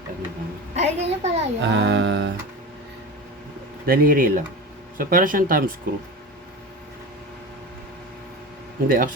ano lang. Ay, ganyan pala yun. Daliri lang. So, para siyang thumb screw. Hindi,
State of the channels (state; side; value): normal; both; correlation 0.29